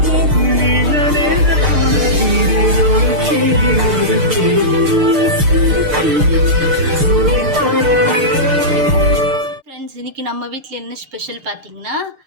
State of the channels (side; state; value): left; late; 6.6 ms